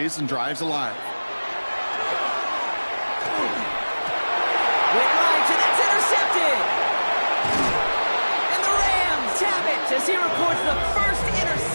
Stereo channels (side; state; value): both; inverted; correlation -1.00